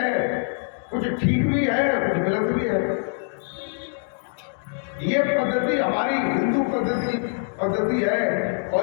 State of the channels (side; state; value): right; silent; 63 dB below the other